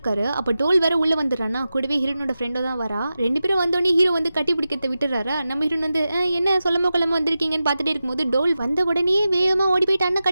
அப்போ டோல் வேற உள்ள வந்துடுறானா, கூடவே ஹீரோனோட ஃப்ரெண்டோ தான் வரா. 2 பேரும் வந்தோடனே ஹீரோ வந்து கட்டி பிடிக்கிறத விட்டுறாரா. நம்ம ஹீரோன் வந்து என்ன சொல்லாம கொள்ளாம வந்திருக்கீங்கன்னு பார்த்துட்டே இருக்கும்போது டோல் வந்த உடனே வேகமாக ஓடி போயிட்டு அண்ணன்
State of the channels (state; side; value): inverted; both; correlation -0.93